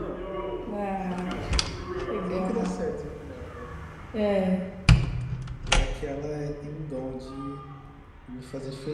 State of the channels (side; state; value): both; identical; correlation 1.00